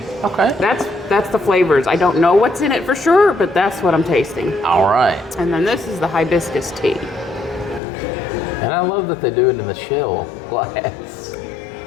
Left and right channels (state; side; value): drops out; right; at 7.8 s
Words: Okay. That's the flavors. I don't know what's in it for sure, but that's what I'm tasting. All right. And then this is the hibiscus tea. And I love that they do it in the shell glass.